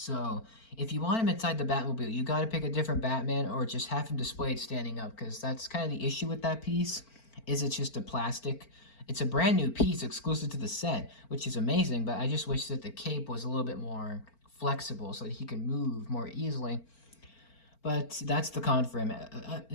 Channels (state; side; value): late; right; 4.4 ms